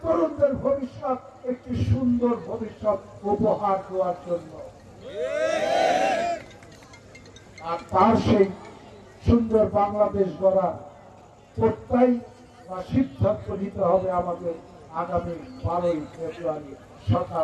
তরুণদের ভবিষ্যৎ, একটি সুন্দর ভবিষ্যৎ উপহার দেওয়ার জন্য। আর তার সেই সুন্দর বাংলাদেশ গড়া প্রত্যয় বা সিদ্ধান্ত নিতে হবে আমাদের আগামী 12ই ফেব্রুয়ারি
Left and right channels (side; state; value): both; identical; correlation 1.00